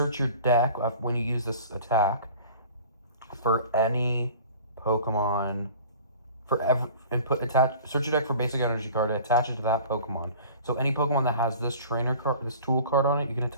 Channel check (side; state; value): both; inverted; correlation -0.44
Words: your deck when you use this attack for any Pokemon search your deck for basic energy card and attach it to that Pokemon. So any Pokemon that has this trainer card, this tool card on it, you can